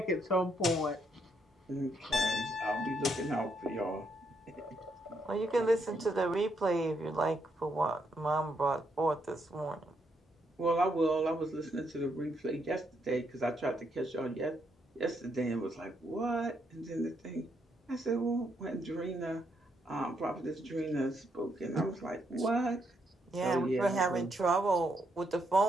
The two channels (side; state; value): both; normal; correlation 0.76